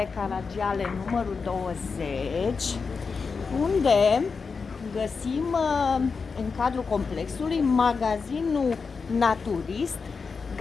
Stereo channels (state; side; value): quieter; right; 5.0 dB